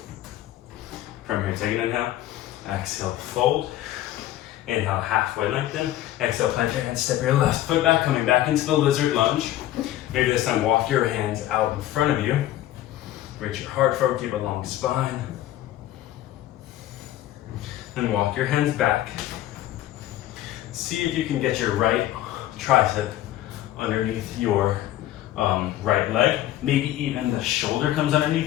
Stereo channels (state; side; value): quieter; right; 13.7 dB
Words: From here, take an inhale. Exhale, fold. Inhale, halfway lengthen. Exhale, plant your hands, step your left foot back, coming back into the lizard lunge. Maybe this time walk your hands out in front of you. Reach your heart forward, keep a long spine. Then walk your hands back. See if you can get your right tricep underneath your right leg. Maybe even the shoulder comes